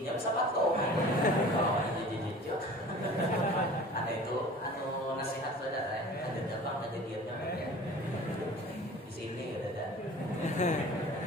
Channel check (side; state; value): both; normal; correlation 0.43